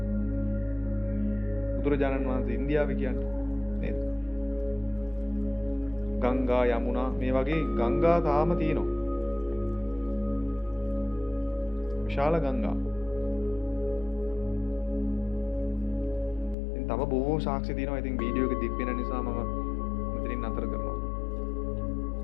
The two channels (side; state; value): right; drops out; at 16.6 s